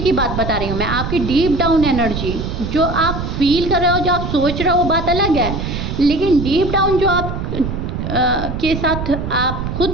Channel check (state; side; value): noise; right; rumble, 4 dB below the sound